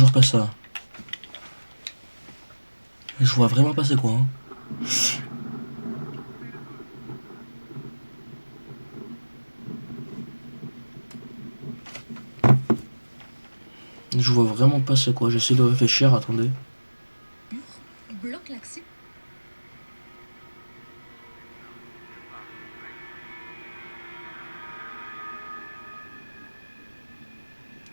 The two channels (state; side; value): inverted; both; correlation -1.00